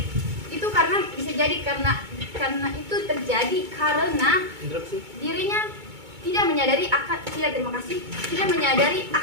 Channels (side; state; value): left; late; 2.2 ms